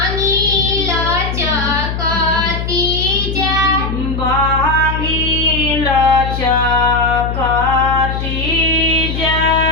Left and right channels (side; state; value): left; noise; hum, 4 dB below the sound